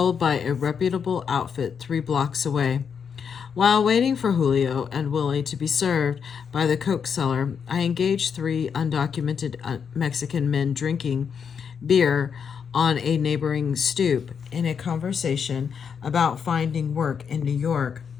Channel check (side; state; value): right; quieter; 6.9 dB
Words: by a reputable outfit 3 blocks away. While waiting for Julio and Willie to be served by the coke seller, I engaged 3 undocumented Mexican men drinking beer on a neighboring stoop in a conversation about finding work in New York.